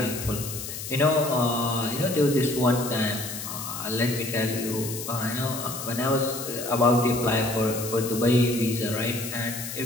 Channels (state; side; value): noise; left; hiss, 8 dB below the sound